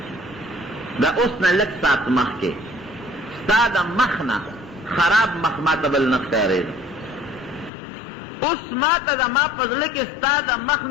دا اوس نه لږ ساعت مخکې ستا د مخ نه خراب مخ ما ته بل نه ښکارېده اوس ما ته زما په زړه کې ستا د مخ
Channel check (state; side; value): drops out; right; at 7.7 s